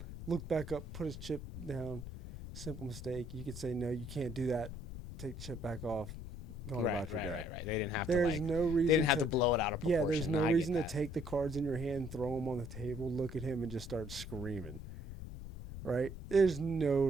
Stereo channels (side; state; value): left; noise; rumble, 10 dB below the sound